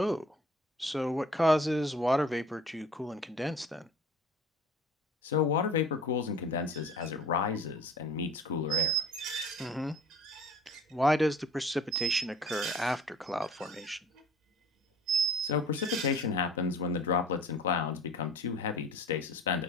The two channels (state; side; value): normal; both; correlation 0.46